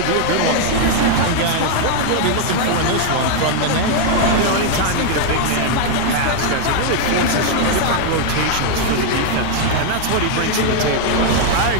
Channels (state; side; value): different; both; correlation 0.00